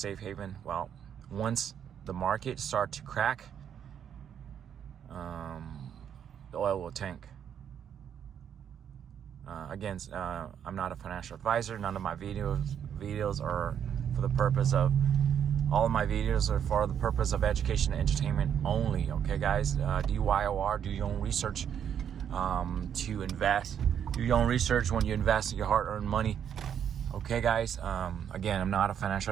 haven. Well, once the market starts to crack, the oil will tank. Again, I'm not a financial advisor. None of my videos are for the purpose of, all of my videos are for the purpose of education and entertainment only. Okay, guys? DYOR, do your own research to invest. Do your own research when you invest your hard-earned money. Okay, guys? Again, I'm not a financial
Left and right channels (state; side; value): quieter; left; 8.7 dB